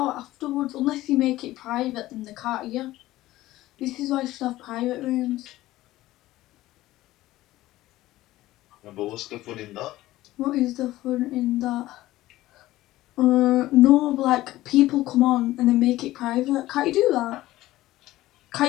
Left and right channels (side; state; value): right; quieter; 16.3 dB